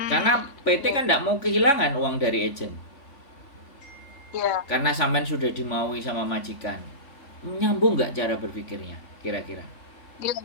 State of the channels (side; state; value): right; late; 3.5 ms